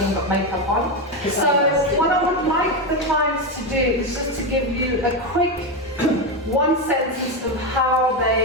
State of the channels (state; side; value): normal; both; correlation 0.11